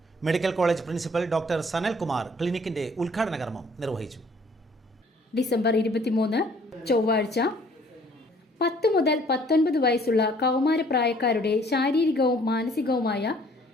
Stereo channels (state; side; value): normal; both; correlation 0.58